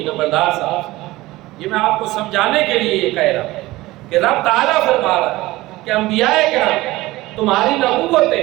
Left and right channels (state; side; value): quieter; left; 18.7 dB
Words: نمبردار صاحب۔ یہ میں آپ کو سمجھانے کے لیے یہ کہہ رہا ہوں کہ رب تعالیٰ فرما رہا ہے کہ انبیاء کرام تمہاری